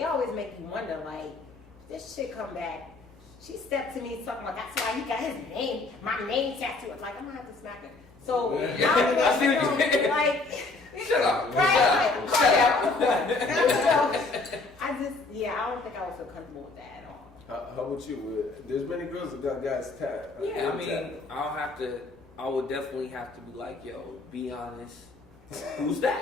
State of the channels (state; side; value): quieter; right; 3.5 dB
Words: always make you wonder, like, this shit come back. She stepped to me talking about that's why he got his name, my name tattooed. I'm like, I'm gonna have to smack her. So I see what you mean. like, shut up. right? Shut up. I don't think I would feel comfortable with that at all. How about you? There's many girls that got guys tattooed. Yeah, I mean, I would definitely have to be like, yo, be honest. Who's